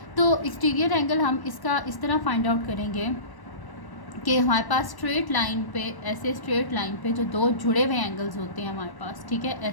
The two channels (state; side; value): late; right; 1.1 ms